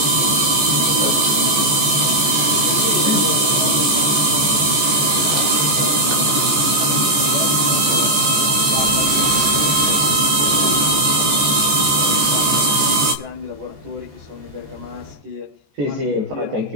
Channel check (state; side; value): late; left; 14 ms